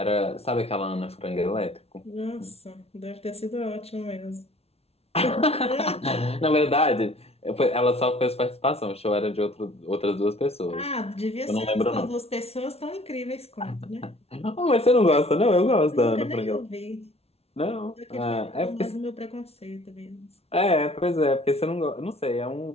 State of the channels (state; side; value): late; right; 0.30 ms